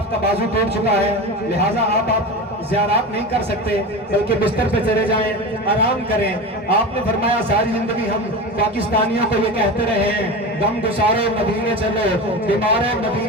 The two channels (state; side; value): normal; both; correlation 0.26